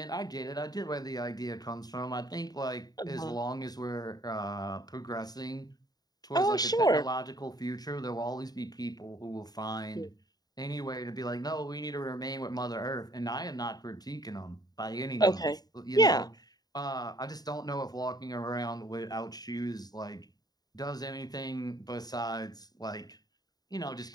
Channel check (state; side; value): late; right; 0.19 ms